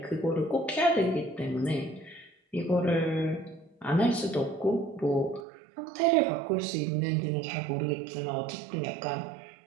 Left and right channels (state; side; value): drops out; left; at 5.5 s